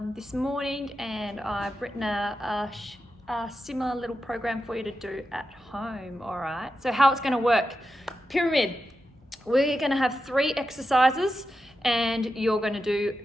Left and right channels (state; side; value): normal; both; correlation 0.89